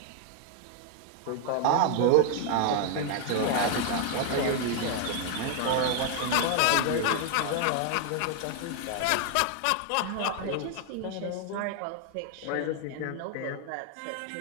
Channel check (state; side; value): different; both; correlation 0.00